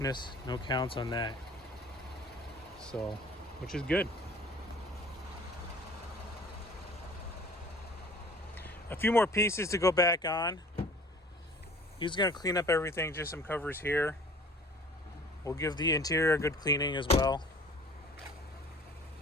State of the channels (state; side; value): normal; both; correlation 0.48